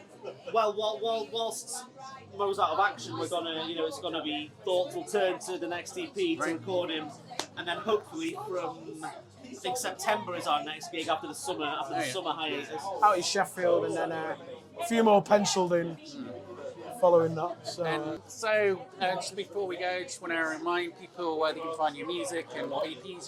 Well, whilst Mo's out of action, we're gonna, it's gonna be thoughtful turn to the next EP to record him, and then hopefully from I think September is our next gig after the summer hiatus. Out in Sheffield, and then a few more penciled in following that. So, Just before we go, just want to remind people where they can find your music and what EPs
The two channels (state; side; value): identical; both; correlation 1.00